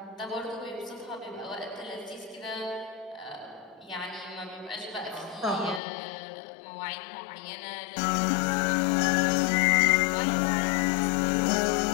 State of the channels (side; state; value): right; drops out; at 5.8 s